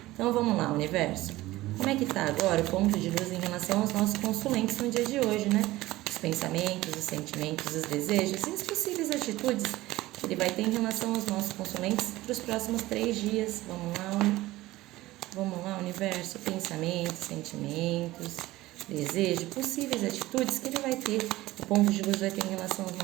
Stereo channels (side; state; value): left; quieter; 17.7 dB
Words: Então, vamos lá, universo. Como é que tá agora o ponto de luz em relação aos nossos consulentes no dia de hoje, né? Os pensamentos, os sentimentos, os desejos e as possíveis atitudes que ele vai ter em relação aos nossos consulentes para os próximos 3 dias. Vamos lá, universo. Pensamentos, sentimentos, desejo, possíveis atitudes que ele vai ter, o ponto de luz vai ter em relação aos